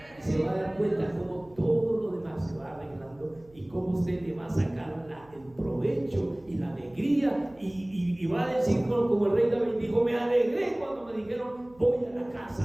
Y se va a dar cuenta cómo todo lo demás se va arreglando y cómo usted le va a sacar el provecho y la alegría y va a decir como el rey David dijo: me alegré cuando me dijeron voy a la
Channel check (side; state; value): right; noise; hum, 27 dB below the sound